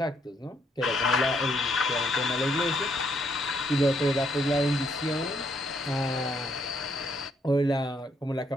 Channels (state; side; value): normal; both; correlation 0.72